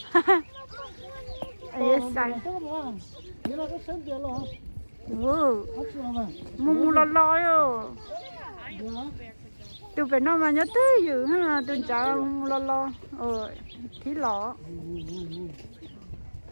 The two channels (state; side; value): inverted; both; correlation -1.00